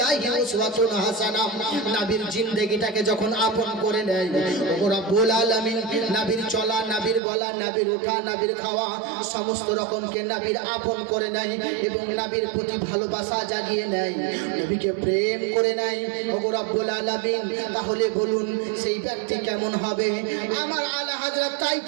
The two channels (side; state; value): left; drops out; at 7.2 s